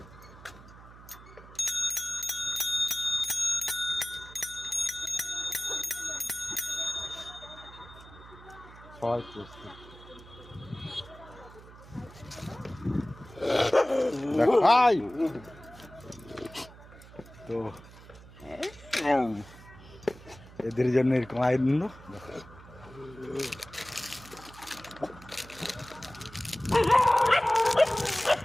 সবাই প্রস্তুত, দেখাই। তো এদের জন্য এরকম আনন্দ।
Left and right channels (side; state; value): right; noise; hum, 19 dB below the sound